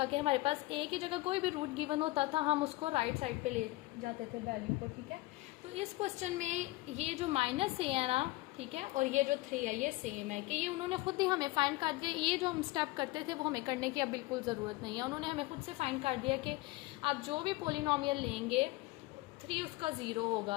कि हमारे पास a की जगह कोई भी रूट गिवन होता था, हम उसको राइट साइड पे ले जाते थे वैल्यू को, ठीक है। तो इस क्वेश्चन में ये जो -a है ना, ठीक है, और ये जो 3 है ये सेम है, कि ये उन्होंने खुद ही हमें फाइंड कर दिया। ये जो हम स्टेप करते थे वो हमें करने की अब बिल्कुल ज़रूरत नहीं है, उन्होंने हमें खुद से फाइंड कर दिया कि आप जो भी पोलिनोमियल लेंगे 3 उसका 0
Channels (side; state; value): right; quieter; 20.5 dB